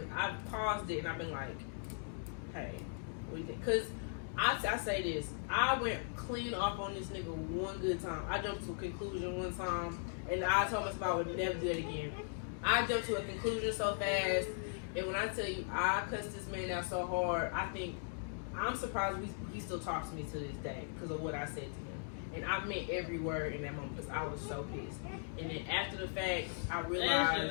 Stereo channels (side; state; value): right; silent; digital silence